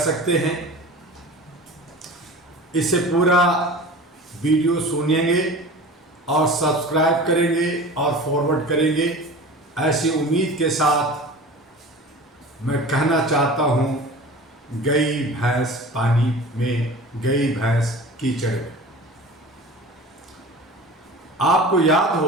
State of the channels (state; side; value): normal; both; correlation 0.38